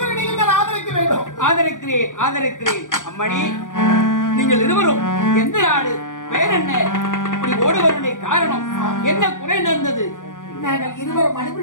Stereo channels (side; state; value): right; late; 0.87 ms